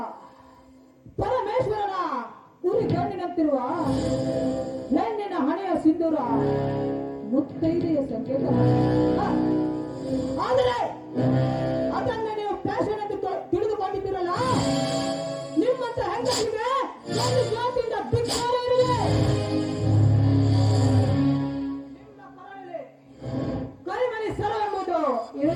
ಪರಮೇಶ್ವರನ ಉರಿ ಕಣ್ಣಿನಂತಿರುವ ಹೆಣ್ಣಿನ ಹಣೆಯ ಸಿಂಧೂರ ಮುತ್ತೈದೆಯ ಸಂಕೇತ. ಆದರೆ ಅದನ್ನ ನೀವು ಫ್ಯಾಷನ್ ಎಂದು ತಿಳಿದುಕೊಂಡಿದ್ದೀರಲ್ಲ, ನಿಮ್ಮಂತ ಹೆಂಗಸಿಗೆ ಒಂದು ಜಾತಿಯಿಂದ ಧಿಕ್ಕಾರ ಇರಲಿ. ನಿಮ್ಮ ಕರಳಲ್ಲಿ ಕರಿಮಣಿ ಸರ ಎಂಬುದು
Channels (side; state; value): both; identical; correlation 1.00